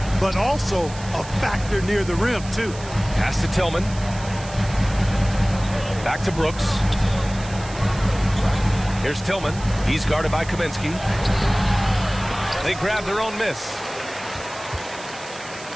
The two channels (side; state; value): right; noise; hiss, 16 dB below the sound